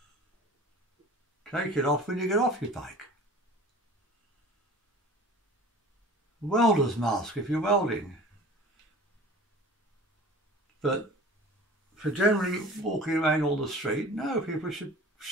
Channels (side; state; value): both; normal; correlation 0.42